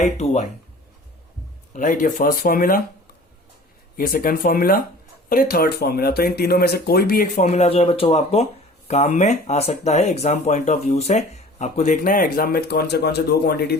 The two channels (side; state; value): both; normal; correlation 0.45